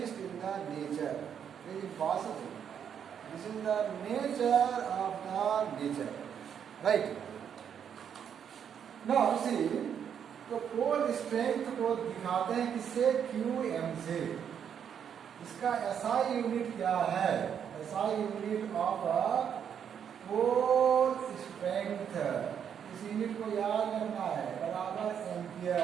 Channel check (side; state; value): left; quieter; 8.2 dB